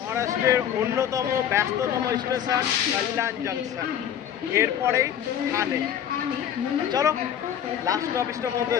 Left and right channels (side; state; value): right; quieter; 9.6 dB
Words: অন্যতম ব্যস্ততম স্টেশন কল্যাণ জংশন, এরপরেই ঠানে। চলো লাস্ট অফিসটার মধ্যে